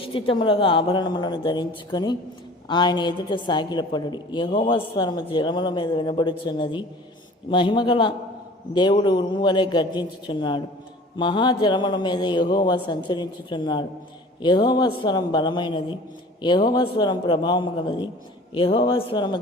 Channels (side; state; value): both; normal; correlation 0.45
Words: ఆభరణములను ధరించుకొని ఆయన ఎదుట సాగిలపడుడి. యెహోవా స్వరము జలముల మీద వినబడుచున్నది. మహిమగల దేవుడు ఉరుము వలె గర్జించుచున్నాడు. మహాజలముల మీద యెహోవా సంచరించుచున్నాడు. యెహోవా స్వరం బలమైనది, యెహోవా స్వరం ప్రభావము గలది. యెహోవా స్వరము